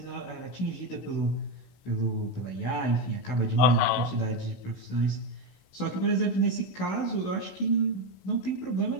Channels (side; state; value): right; late; 16 ms